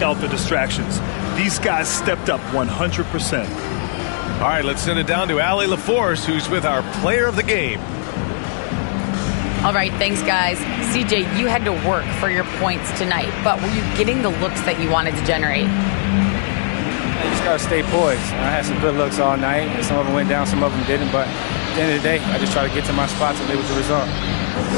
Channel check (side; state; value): right; silent; digital silence